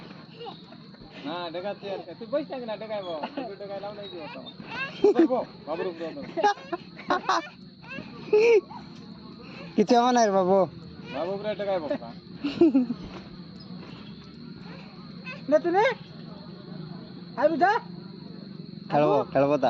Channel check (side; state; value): both; identical; correlation 1.00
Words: না দেখাচ্ছি আর তুই বইস থাক না দেখাইবো দেখাইলাম নাই দিব তো বাবুর উপরে কিছু আমার নাই বাবু বাবু উপরে দেখাইবো নে তুই নে আই বুঝা খেলবো